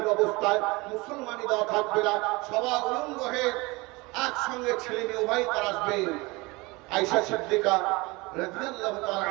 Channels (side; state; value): left; quieter; 24.1 dB